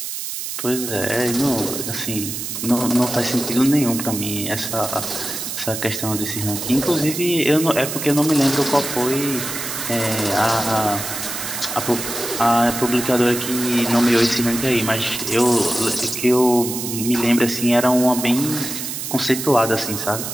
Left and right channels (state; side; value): noise; right; hiss, 6 dB below the sound